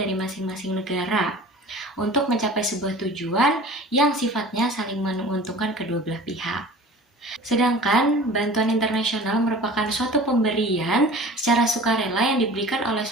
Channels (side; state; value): both; normal; correlation 0.41